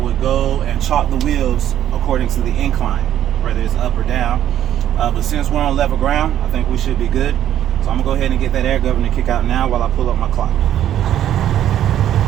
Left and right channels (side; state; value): left; quieter; 11.2 dB